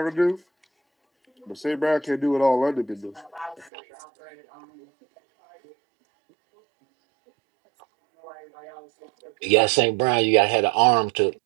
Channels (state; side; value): drops out; left; at 3.7 s